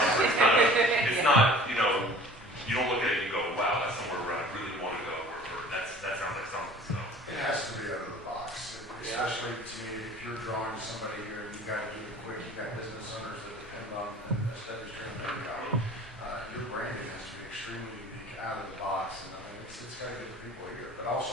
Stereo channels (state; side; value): normal; both; correlation 0.46